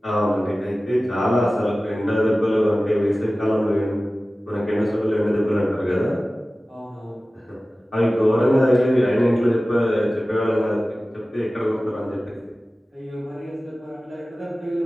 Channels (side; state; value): both; normal; correlation 0.96